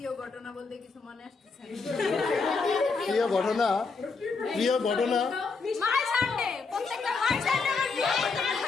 ঘটনা বলতে কিছু মনে আসছে না। প্রিয় ঘটনা মাই সানডে, প্রত্যেকটা মাই সানডে আমার প্রিয় ঘটনা।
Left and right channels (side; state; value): right; quieter; 4.5 dB